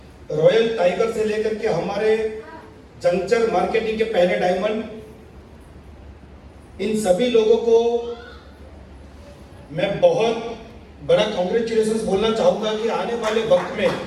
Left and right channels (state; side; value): identical; both; correlation 1.00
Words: रॉयल टाइगर से लेकर के हमारे जंक्चर मार्केटिंग के पहले डायमंड, इन सभी लोगों को मैं बहुत बड़ा कांग्रेचुलेशंस बोलना चाहूंगा कि आने वाले वक्त में